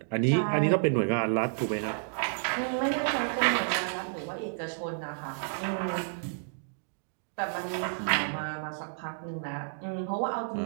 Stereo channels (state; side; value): silent; left; digital silence